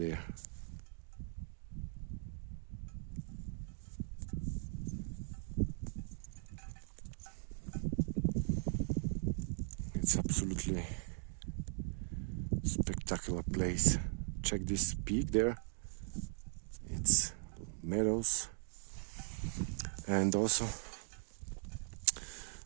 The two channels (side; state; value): left; silent; 51 dB below the other